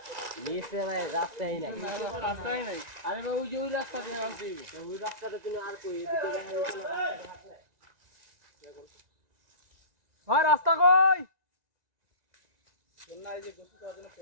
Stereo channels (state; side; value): late; left; 1.9 ms